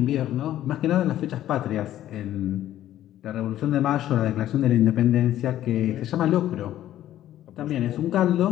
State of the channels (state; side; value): quieter; right; 12.7 dB